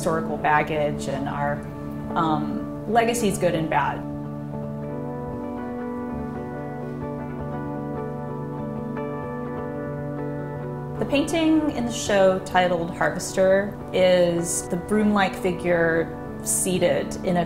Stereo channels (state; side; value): identical; both; correlation 1.00